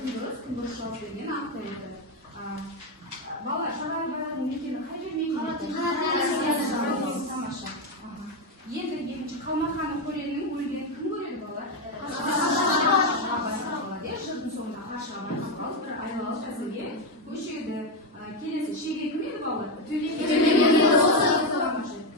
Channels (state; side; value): normal; both; correlation 0.08